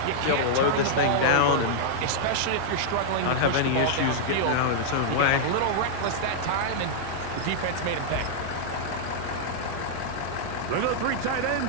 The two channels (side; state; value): both; different; correlation -0.02